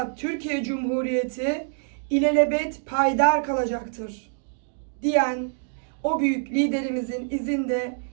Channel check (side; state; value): left; silent; digital silence